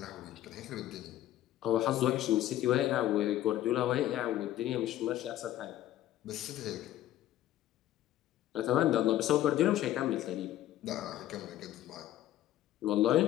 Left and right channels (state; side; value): quieter; right; 13.4 dB